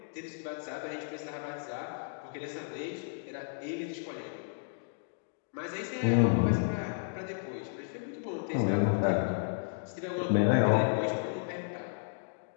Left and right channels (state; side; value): silent; right; digital silence